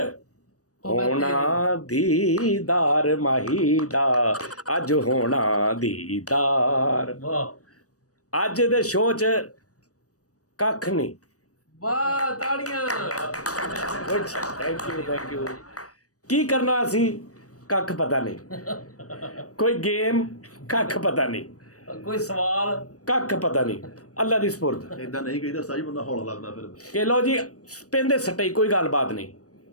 ਹੋਣਾ ਦੀਦਾਰ ਮਾਹੀ ਦਾ, ਅੱਜ ਹੋਣਾ ਦੀਦਾਰ। ਅੱਜ ਦੇ ਸ਼ੋਅ 'ਚ ਕੱਖ ਨਹੀਂ। ਵਾਹ ਤਾੜੀਆਂ। Thank you. ਕੀ ਕਰਨਾ ਅਸੀਂ ਕੱਖ ਪਤਾ ਨਹੀਂ, ਕੋਈ ਗੇਮ ਕੱਖ ਪਤਾ ਨਹੀਂ, ਕੋਈ ਸਵਾਲ ਕੱਖ ਪਤਾ ਨਹੀਂ। ਅੱਲਾ ਦੀ ਸਪੁਰਦ। ਇਦਾਂ ਨਹੀਂ ਕਹੀਦਾ ਸਾਜੀ, ਬੰਦਾ ਹੌਲਾ ਲੱਗਦਾ ਫਿਰ ਕਿ ਲਓ ਜੀ ਪਿੰਦੇ ਸੱਟੇ ਕੋਈ ਗੱਲਬਾਤ ਨਹੀਂ।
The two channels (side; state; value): right; late; 0.66 ms